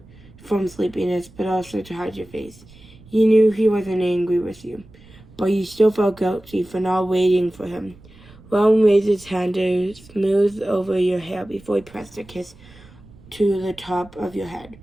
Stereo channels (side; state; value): right; noise; rumble, 23 dB below the sound